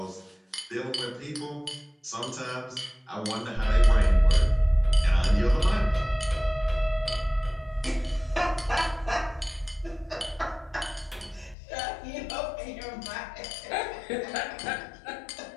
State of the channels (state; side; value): drops out; right; at 11.6 s